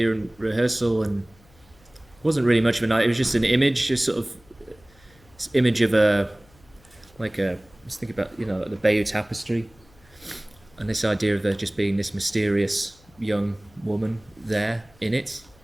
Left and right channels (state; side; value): noise; left; hum, 29 dB below the sound